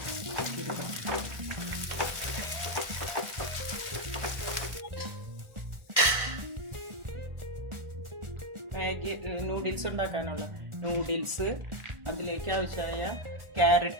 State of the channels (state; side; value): late; left; 1.4 ms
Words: മാഗി നൂഡിൽസ് ഉണ്ടാക്കാനുള്ള നൂഡിൽസ്, അതിലേക്ക് ആവശ്യമായ